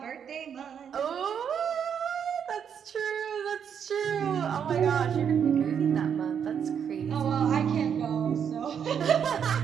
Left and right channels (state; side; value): quieter; left; 7.9 dB